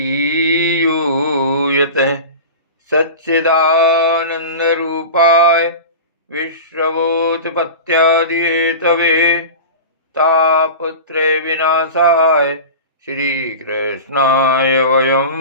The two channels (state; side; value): inverted; both; correlation -0.32